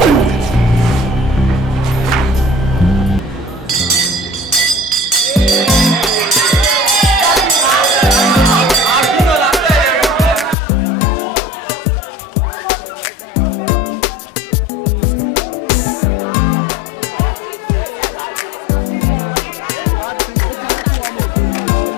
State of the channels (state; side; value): drops out; right; at 10.6 s